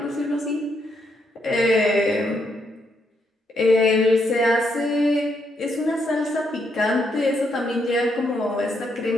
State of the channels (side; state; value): both; normal; correlation 0.77